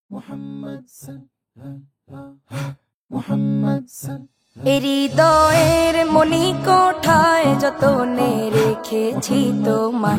Muhammad sallallahu Muhammad হৃদয়ের মনি কোঠায় যতনে রেখেছি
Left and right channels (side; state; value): both; identical; correlation 1.00